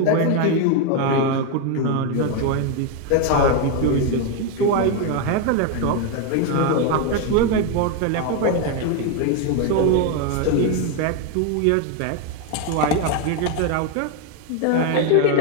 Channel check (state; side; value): different; both; correlation 0.02